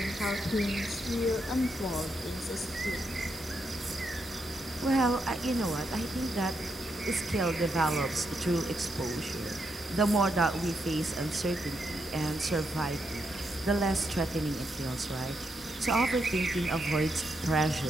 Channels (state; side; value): normal; both; correlation 0.81